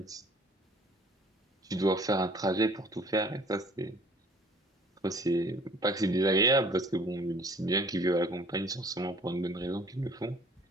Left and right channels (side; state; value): both; normal; correlation 0.53